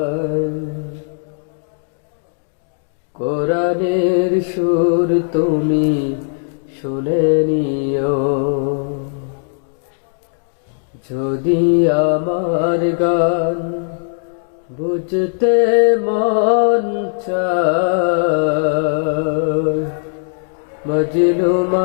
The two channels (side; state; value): right; silent; digital silence